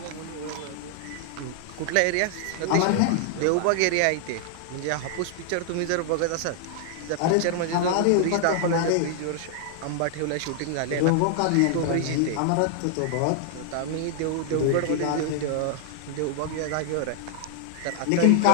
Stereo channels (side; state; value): both; different; correlation 0.00